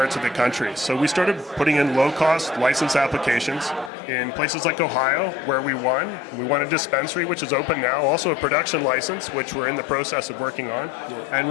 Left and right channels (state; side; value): drops out; right; at 3.9 s